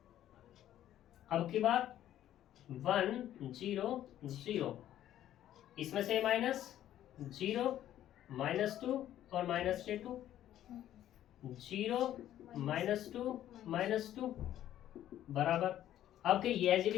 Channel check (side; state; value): right; quieter; 12.1 dB